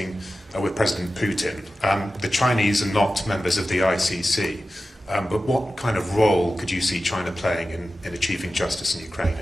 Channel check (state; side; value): normal; both; correlation 0.94